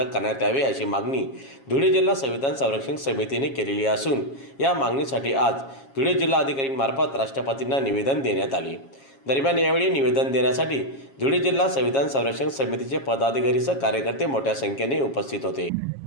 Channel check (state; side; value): late; right; 7.3 ms